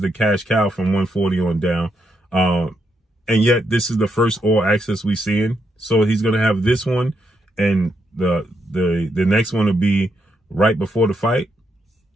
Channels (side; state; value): both; normal; correlation 0.80